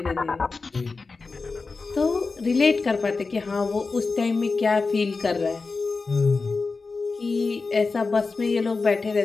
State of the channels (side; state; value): right; quieter; 4.2 dB